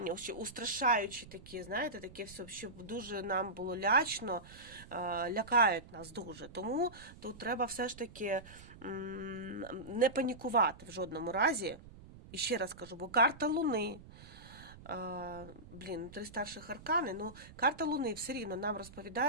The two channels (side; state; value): right; noise; rumble, 18 dB below the sound